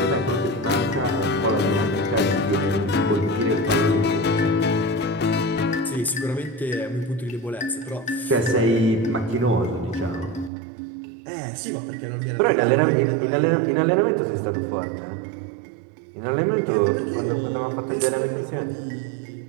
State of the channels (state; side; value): drops out; left; at 10.5 s